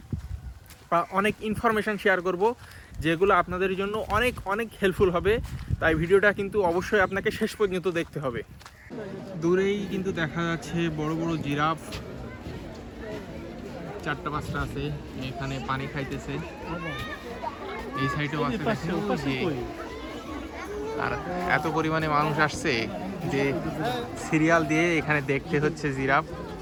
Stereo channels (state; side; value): identical; both; correlation 1.00